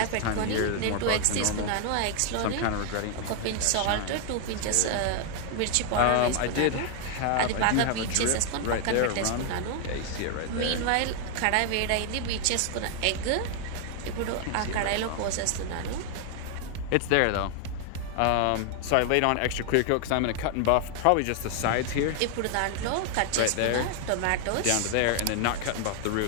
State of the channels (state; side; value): different; both; correlation 0.00